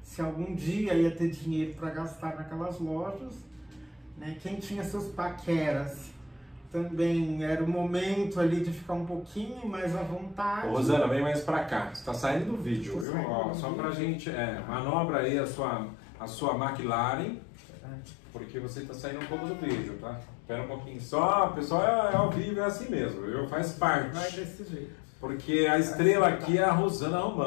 se algum dia ia ter dinheiro para gastar naquelas lojas, né? Quem tinha seus paqueras também era o momento ali de ficar um pouquinho mais à vontade. Ô, Rosana, vem mais pra cá, você tá saindo do vídeo, viu? Ó, só pra gente, manobra aí a sua McLaren, porque você tá saindo um pouco do vídeo, tá? Espera um pouquinho só, pessoal, é ao vivo, é assim mesmo, viu? Faz parte. Vai desse jeito. Porque a estrela aqui é a Rosana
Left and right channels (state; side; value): drops out; right; at 13.1 s